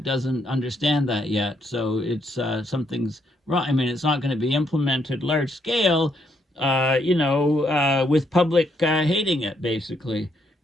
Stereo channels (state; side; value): normal; both; correlation 0.74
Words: doesn't understand that yet. So it's something's wrong. I mean, it's not going to be implemented large scale, with public hating it, basically.